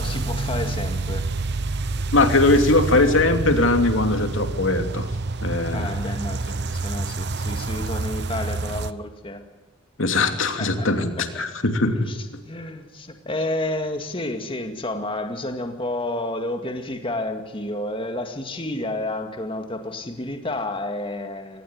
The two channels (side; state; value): both; normal; correlation 0.31